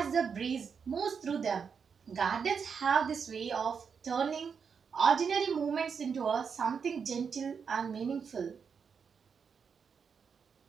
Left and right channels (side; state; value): left; quieter; 6.3 dB